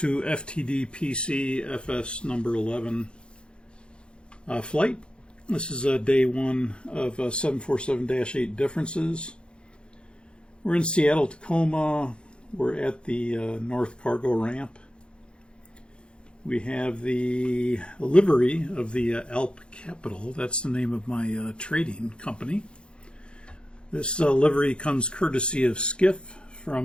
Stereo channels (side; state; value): right; late; 0.054 ms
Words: Ftd-Pc Fs number 11 flight. This is day one of 747-8 differences. We're in Seattle, Tacoma. We're at the North Cargo Ramp. We have the livery of the Alp Capital. That's the name of my trading company. This livery comes courtesy of Skiff